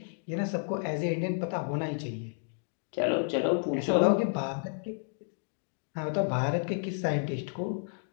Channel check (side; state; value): right; silent; digital silence